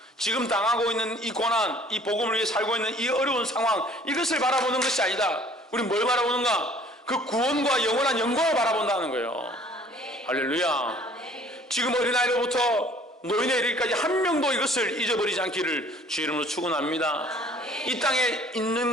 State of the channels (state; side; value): normal; both; correlation 0.54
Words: 지금 당하고 있는 이 고난, 이 복음을 위해 살고 있는 이 어려운 상황, 이것을 바라보는 것이 아니다. 우리 뭘 바라보는가? 그 구원과 영원한 영광을 바라본다는 거예요. 할렐루야. 지금 어린아이로부터 노인에 이르기까지 한 명도 이것을 잊어버리지 않기를 주 이름으로 축원합니다. 이 땅에 있는